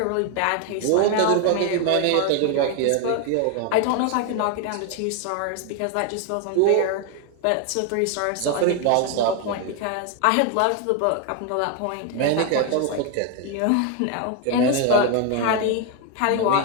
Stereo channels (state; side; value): different; both; correlation 0.01